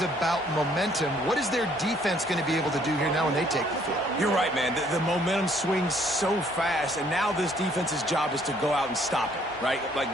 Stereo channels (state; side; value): normal; both; correlation 0.64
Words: momentum. What is their defense going to be able to do here now when they take the field? You're right, man. The momentum swings so fast, and now this defense's job is to go out and stop it, right? Like,